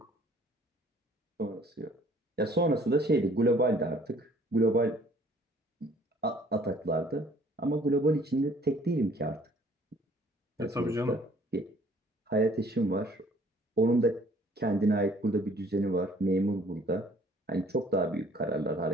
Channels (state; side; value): normal; both; correlation 0.57